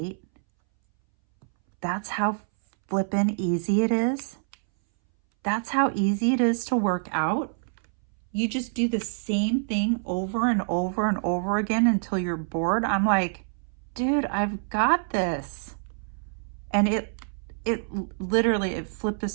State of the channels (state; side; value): silent; left; 61 dB below the other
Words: That's how flippin' easy it is. That's how easy it is to work out. You just do the same thing over and over and over again until you're bored. I'm like, dude, I've got this. And it literally, it flipped a